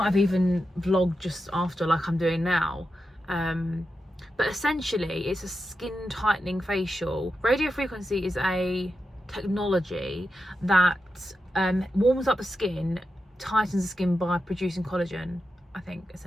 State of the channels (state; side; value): normal; both; correlation 0.89